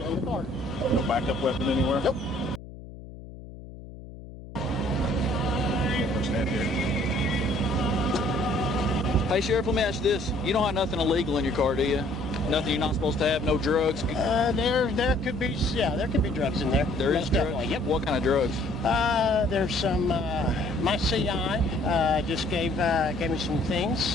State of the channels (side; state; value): left; noise; hum, 15 dB below the sound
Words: the car. No backup weapon anywhere? Nope. Stand here. Hey, Sheriff, let me ask you this. You don't have nothing illegal in your car, do you? Nothing you're not supposed to have? No drugs? There could be drugs in there. There is Most drugs? definitely. Yep. What kind of drugs? There's some. My CI just gave me some things.